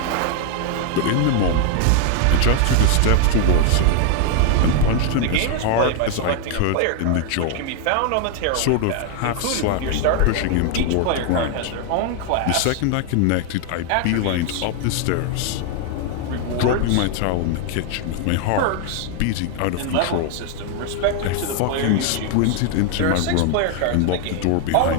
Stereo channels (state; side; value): different; both; correlation 0.00